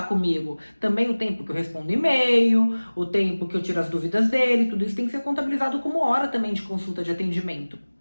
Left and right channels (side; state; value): both; inverted; correlation -1.00